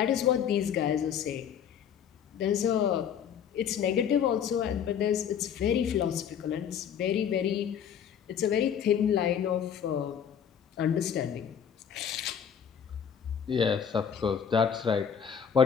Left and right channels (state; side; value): quieter; right; 8.2 dB